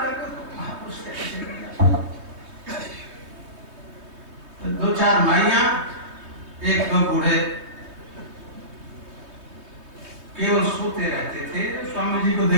महापुरुष तो 2-4 माइयां 1-2 बूढ़े केवल सोते रहते थे। स्वामी जी को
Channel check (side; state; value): left; late; 3.2 ms